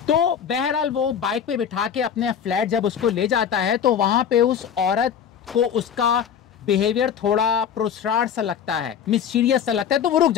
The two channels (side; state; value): right; quieter; 8.2 dB